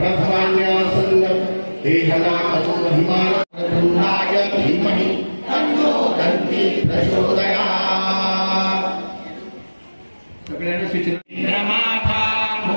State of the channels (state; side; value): inverted; both; correlation -1.00